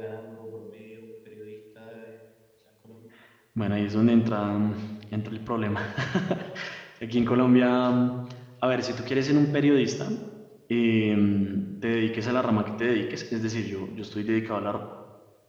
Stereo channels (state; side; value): identical; both; correlation 1.00